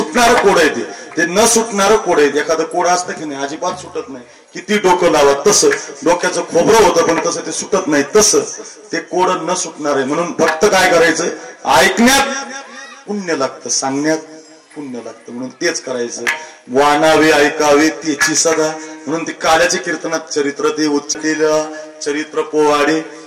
कोड आहे, ते न सुटणारं कोड आहे. एखादं कोड असतं की नाही अजिबात सुटत नाही, किती डोकं लावा. तसं डोक्याचं खोबरं होतं पण तसं ते सुटत नाही, तसं ते कोड न सुटणार आहे. म्हणून फक्त काय करायचं, ऐकण्यात पुण्य लागतं, सांगण्यात पुण्य लागतं. म्हणून तेच करायचं. वाणावे ऐकावे त्याची सदा, म्हणून ते काल्याचे कीर्तनात चरित्र, ते उच्चलेलं चरित्र पोवाडे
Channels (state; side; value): identical; both; correlation 1.00